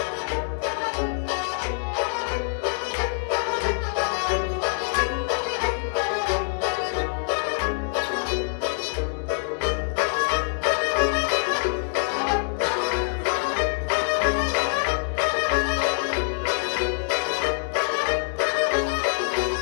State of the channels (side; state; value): right; silent; 62 dB below the other